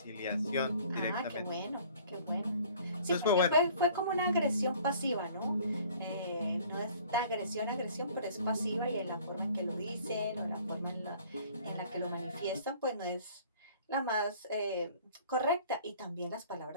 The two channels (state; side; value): inverted; both; correlation -0.53